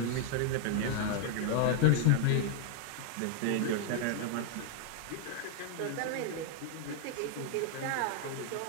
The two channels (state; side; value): different; both; correlation 0.00